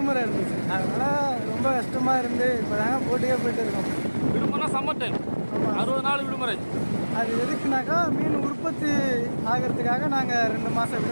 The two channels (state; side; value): inverted; both; correlation -1.00